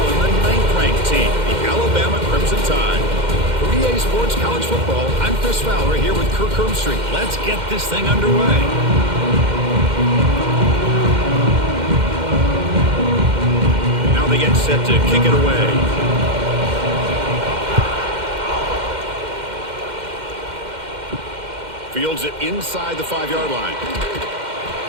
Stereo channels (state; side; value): late; left; 2.1 ms